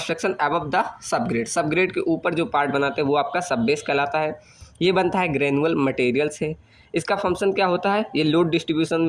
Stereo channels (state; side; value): identical; both; correlation 1.00